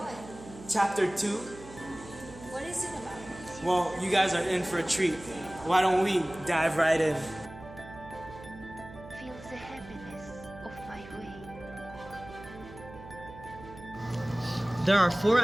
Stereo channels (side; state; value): right; noise; hum, 16 dB below the sound